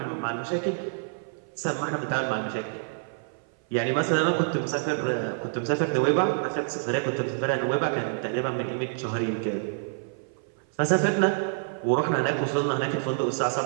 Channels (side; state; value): left; silent; 56 dB below the other